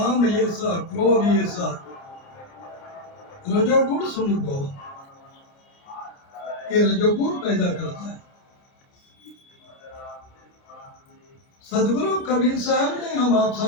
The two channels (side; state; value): right; late; 29 ms